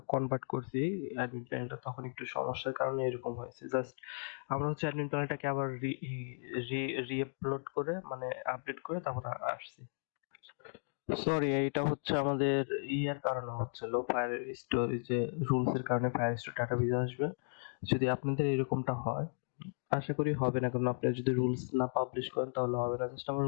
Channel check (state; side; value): silent; right; digital silence